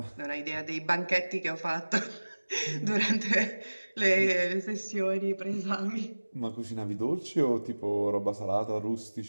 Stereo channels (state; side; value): inverted; both; correlation -1.00